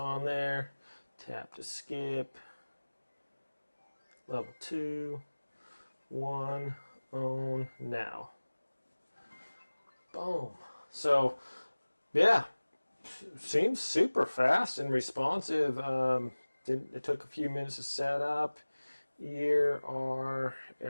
there. Tap to skip. Level 2. 1. Own now. Boom. So, yeah, seems super fast and responsive. It took a few minutes to set up. Year or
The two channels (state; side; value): inverted; both; correlation -1.00